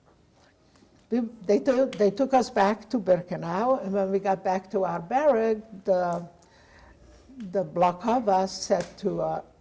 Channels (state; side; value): identical; both; correlation 1.00